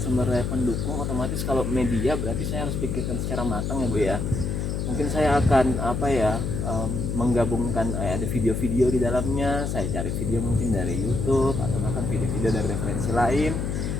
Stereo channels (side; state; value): left; noise; hum, 1 dB below the sound